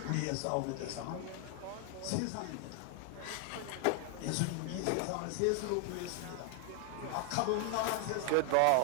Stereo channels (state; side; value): different; both; correlation 0.00